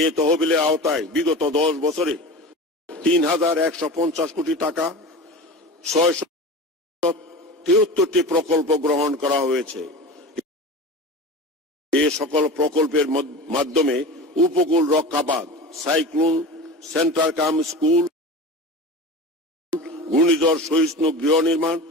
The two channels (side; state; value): both; normal; correlation 0.32